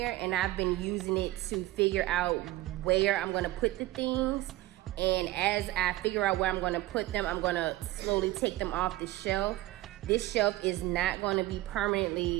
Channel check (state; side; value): quieter; left; 17.1 dB